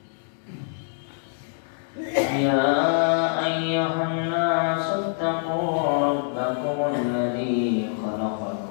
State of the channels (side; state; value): right; silent; digital silence